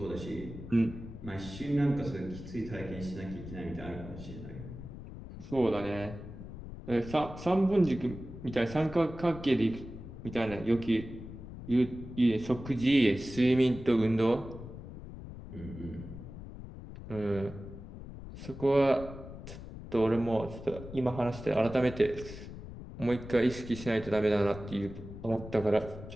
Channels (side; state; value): left; noise; rumble, 12 dB below the sound